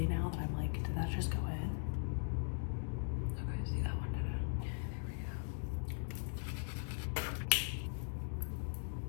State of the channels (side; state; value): right; silent; digital silence